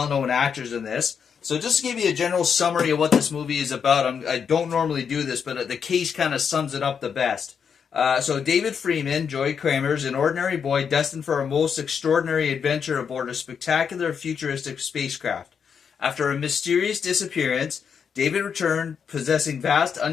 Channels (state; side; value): quieter; right; 6.9 dB